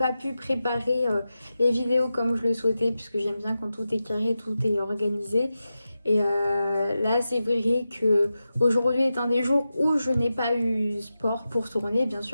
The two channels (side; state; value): both; inverted; correlation -0.91